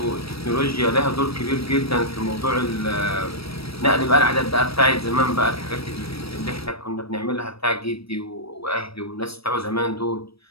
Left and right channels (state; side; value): late; right; 0.76 ms